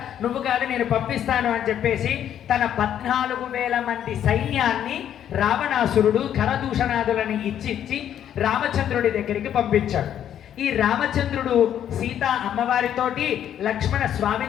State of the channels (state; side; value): quieter; right; 10.1 dB